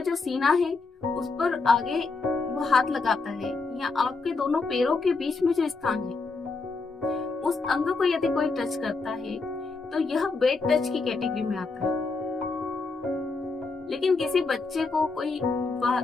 सीना है उस पर आगे वो हाथ लगाता है, या आपके दोनों पैरों के बीच में जो स्थान है उस अंग को यदि कोई टच करता है तो यह बैड टच की कैटेगरी में आता है। लेकिन किसी बच्चे को कोई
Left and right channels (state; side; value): quieter; right; 4.0 dB